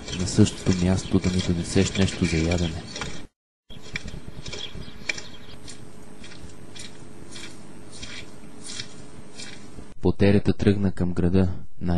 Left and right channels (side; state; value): both; identical; correlation 1.00